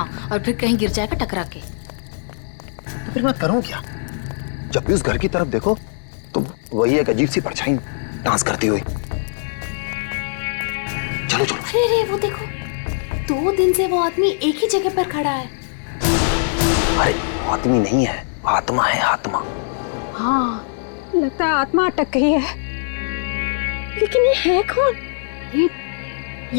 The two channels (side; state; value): right; silent; digital silence